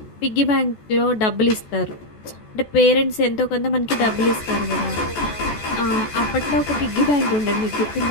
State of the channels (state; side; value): late; right; 14 ms